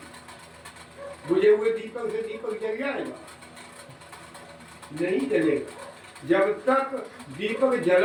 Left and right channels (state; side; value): identical; both; correlation 1.00